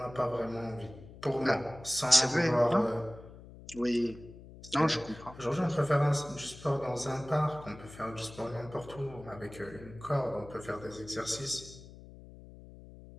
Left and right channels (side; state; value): left; noise; hum, 17 dB below the sound